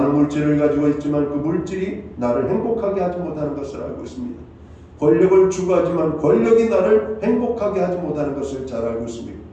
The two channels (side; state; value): both; identical; correlation 1.00